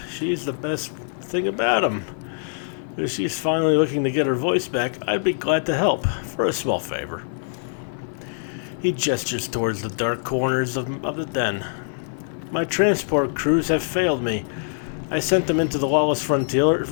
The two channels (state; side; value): silent; right; 63 dB below the other